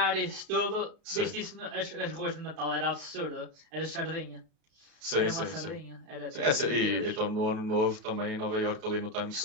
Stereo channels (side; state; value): left; late; 33 ms